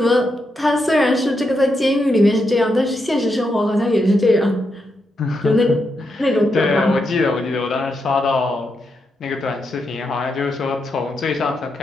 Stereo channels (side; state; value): both; normal; correlation 0.83